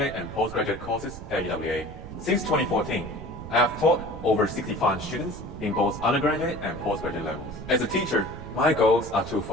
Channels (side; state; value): right; noise; rumble, 13 dB below the sound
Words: and postgraduate courses at UWA. Since 2014, I have taught over 65 students in both undergraduate and postgraduate levels. As a teacher, my goals are